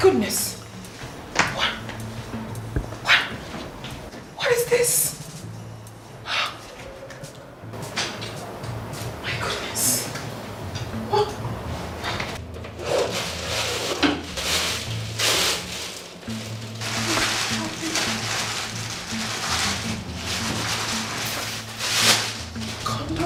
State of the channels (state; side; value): identical; both; correlation 1.00